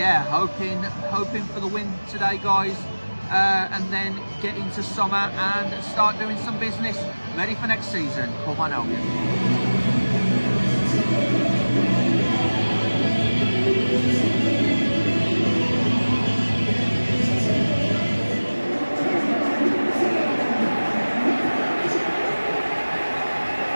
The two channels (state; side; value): inverted; both; correlation -1.00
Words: hoping for the win today, guys. And then get into summer and start doing some business, ready for next season. Come on, Albion.